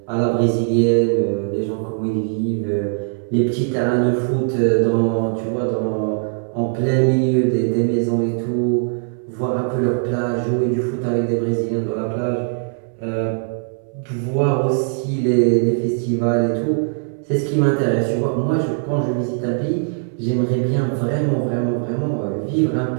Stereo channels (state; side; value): silent; left; 66 dB below the other